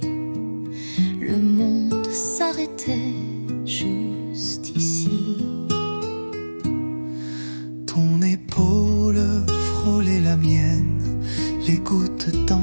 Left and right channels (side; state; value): both; inverted; correlation -1.00